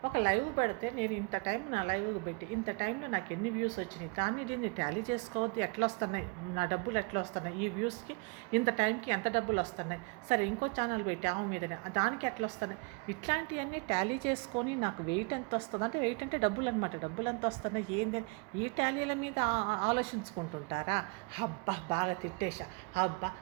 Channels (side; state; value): left; quieter; 30.6 dB